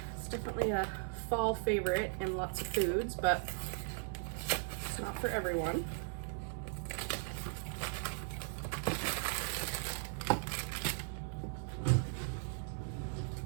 It's definitely a fall favorite in lots of foods, but it's not for everyone.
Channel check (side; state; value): left; silent; digital silence